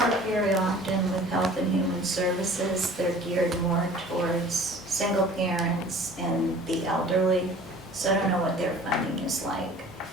very often with Health and Human Services. They're geared more towards single parents and the elderly, so I don't know what their funding is like.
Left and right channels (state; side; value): normal; both; correlation 0.47